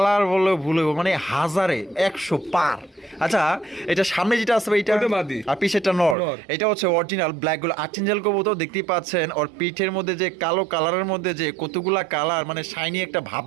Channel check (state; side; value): drops out; left; at 6.2 s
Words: বলে ভুলে মানে হাজারে 100 পার। আচ্ছা এটা সামনে যেটা আছে ভাই, এটা ওটা মাদি। আর পিছেরটা নর। নর। এটা হচ্ছে অরিজিনাল ব্ল্যাক গুলো আর্চেঞ্জেল কবুতর দেখতেই পাচ্ছেন। ওর পিঠের মধ্যে যে কালো কালারের মধ্যে যে কতগুলা কালার, মানে শাইনি একটা ভাব